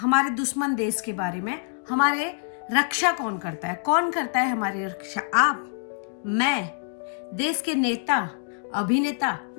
दुश्मन देश के बारे में। हमारे रक्षा कौन करता है हमारी रक्षा? आप, मैं, देश के नेता, अभिनेता,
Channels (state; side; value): silent; right; 58 dB below the other